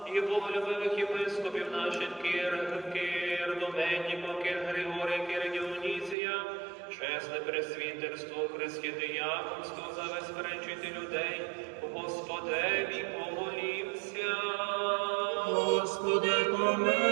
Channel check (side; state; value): left; drops out; at 6.2 s